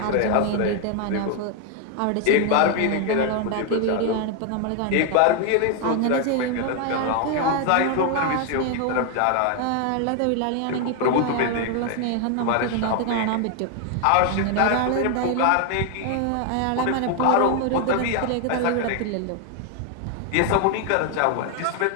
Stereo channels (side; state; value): both; different; correlation 0.01